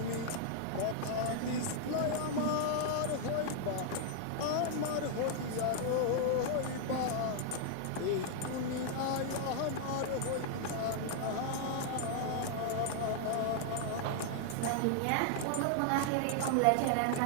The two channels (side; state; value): both; different; correlation -0.01